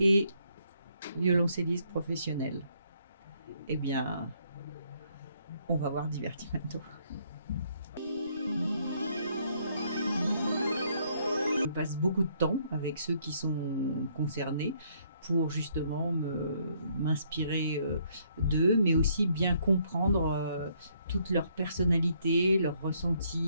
violoncelliste professionnel? Eh bien, on va voir Divertimento. Je passe beaucoup de temps avec ceux qui sont concernés pour justement m'inspirer d'eux, mais aussi bien comprendre toute leur personnalité, leurs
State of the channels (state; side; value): inverted; both; correlation -0.69